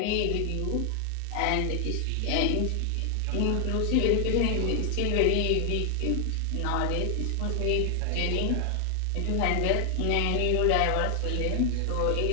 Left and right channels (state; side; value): different; both; correlation 0.00